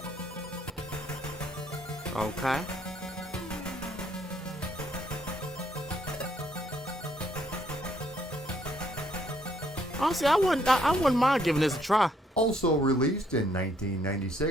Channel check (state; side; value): normal; both; correlation 0.69